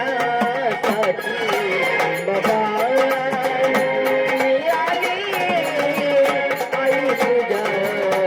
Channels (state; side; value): identical; both; correlation 1.00